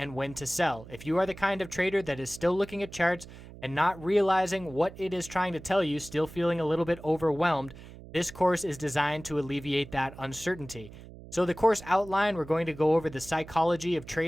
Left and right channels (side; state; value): right; noise; hum, 17 dB below the sound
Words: when to sell. If you are the kind of trader that is still looking at charts and not realizing what it is trying to tell you, still feeling a little bit overwhelmed, this course is designed to alleviate that uncertainty. So the course outline, we're going to go over the psychology of